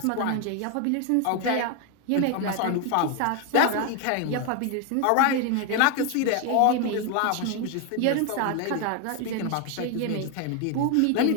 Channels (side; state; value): both; different; correlation 0.01